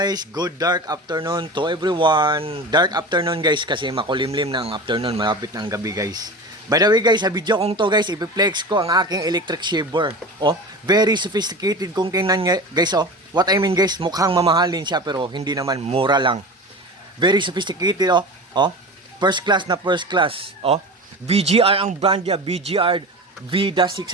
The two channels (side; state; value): both; normal; correlation 0.31